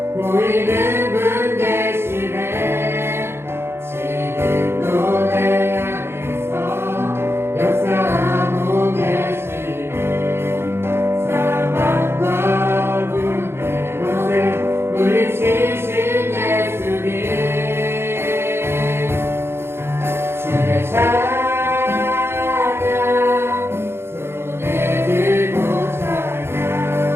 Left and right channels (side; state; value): left; late; 0.12 ms